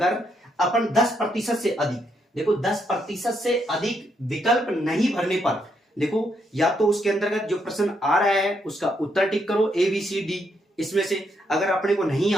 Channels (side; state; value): both; normal; correlation 0.77